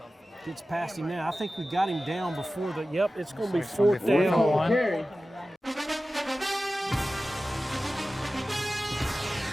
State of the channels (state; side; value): normal; both; correlation 0.95